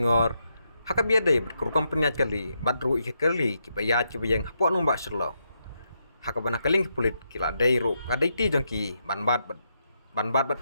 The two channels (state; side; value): inverted; both; correlation -0.81